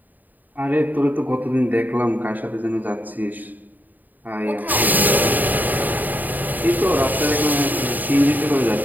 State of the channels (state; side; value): late; left; 0.085 ms